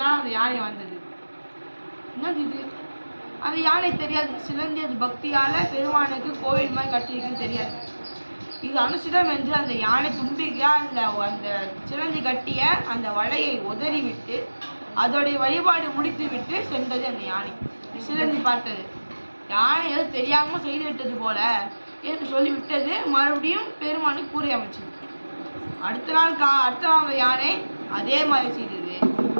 நாள் அந்த யானை வந்தது. என்னது இது? அந்த யானை தெரியாது. சிலந்தி அது பக்தியால பெருமானுக்கு கோவில் மாதிரி கட்டியிருக்குன்னு தெரியாது. இது அனுசிதம் என்று அந்த யானை தும்பிக்கையா அந்த சிலந்தி கட்டிய அந்த வலையை உதறி விட்டு அதோடைய வழிபாடு முடித்து விட்டு சென்றது அந்த யானை. சிலந்தி பார்த்தது, யானை ஏதோ தெரியாம செய்து விட்டது போல என்று சொல்லிவிட்டது. மறுபடியும் பெருமானுக்கு கூரை அமைச்சது. அடுத்த நாள் அந்த யானை அதே மாதிரி செய்தது.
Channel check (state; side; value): inverted; both; correlation -1.00